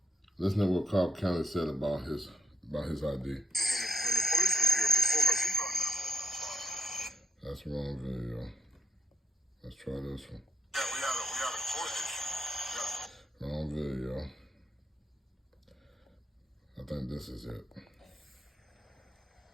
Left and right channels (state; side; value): normal; both; correlation 0.75